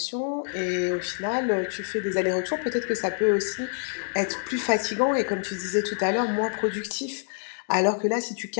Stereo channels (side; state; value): right; silent; digital silence